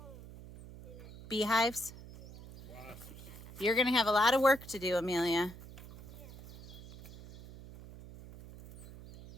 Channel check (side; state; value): right; noise; hum, 16 dB below the sound